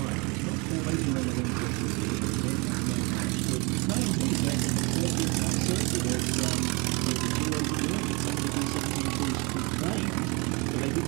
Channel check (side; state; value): left; quieter; 28.7 dB